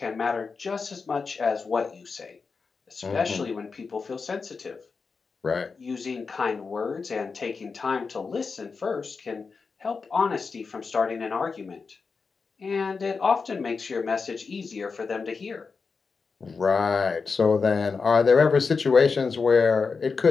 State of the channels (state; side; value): quieter; right; 4.9 dB